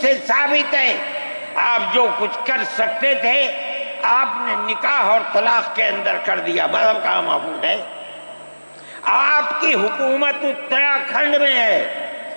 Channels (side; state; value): both; inverted; correlation -1.00